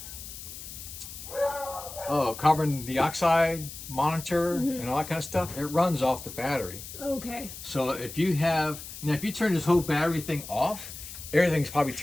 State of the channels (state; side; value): noise; left; hiss, 12 dB below the sound